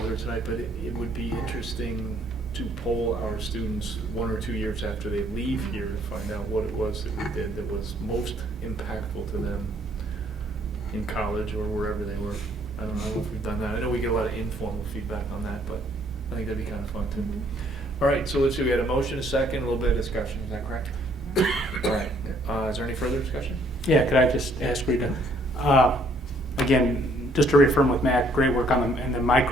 here tonight, but it would be interesting to poll our students 1 or 2 years after they leave here to find out what it was that we did that was most impactful to them in college or wherever they were. I don't know if we've done that. I know we get a lot of informal feedback on that, but I think that'd be kind of fun too. All right, so let's see, we had a motion, a second, a little bit of discussion, is that correct? All right, is there any further discussion? Yeah, could I just ask Rita, again, just to reaffirm with Matt, great work on the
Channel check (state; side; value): normal; both; correlation 0.64